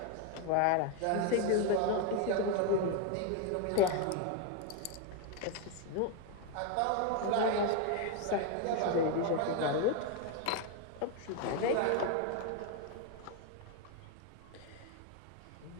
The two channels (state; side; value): different; both; correlation 0.01